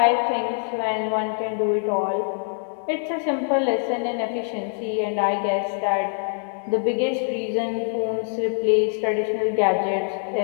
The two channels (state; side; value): silent; right; digital silence